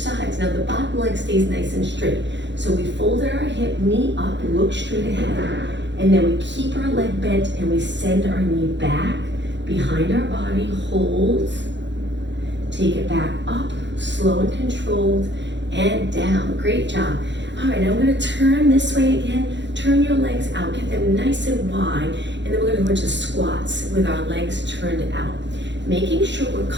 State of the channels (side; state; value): left; late; 0.52 ms